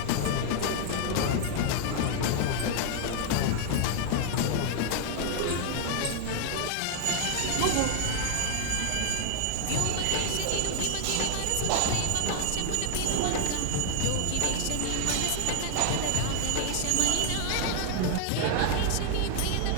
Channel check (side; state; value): both; different; correlation 0.00